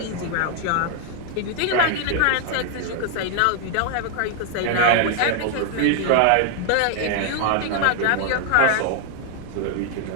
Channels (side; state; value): both; different; correlation 0.00